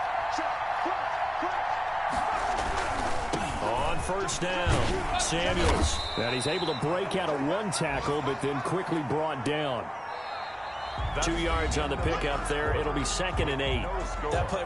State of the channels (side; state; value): both; identical; correlation 1.00